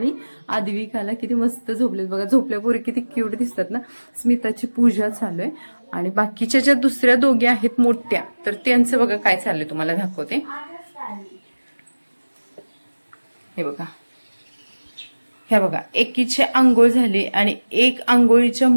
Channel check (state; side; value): inverted; both; correlation -1.00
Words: आद्विकाला किती मस्त झोपलेत बघा, झोपल्यापूर्वी किती क्यूट दिसतात ना. स्मिताची पूजा चालू आहे आणि बाकीच्या ज्या दुसऱ्या दोघी आहेत मोठ्या, तर त्यांचं बघा काय चाललंय तुम्हाला दाखवते. हे बघा, ह्या बघा, एकीची आंघोळ झाली आणि एक आंघोळीच्या